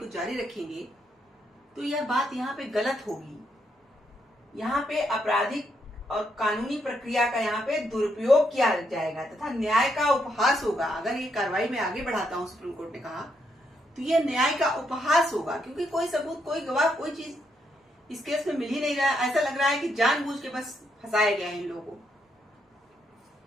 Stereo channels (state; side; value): normal; both; correlation 0.77